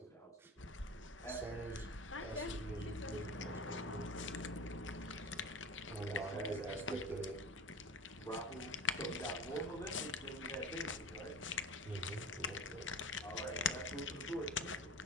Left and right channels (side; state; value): both; normal; correlation 0.32